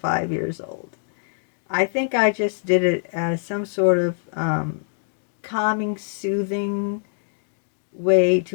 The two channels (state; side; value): silent; right; digital silence